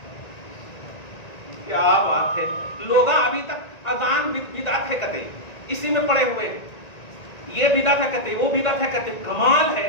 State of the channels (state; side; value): late; right; 1.9 ms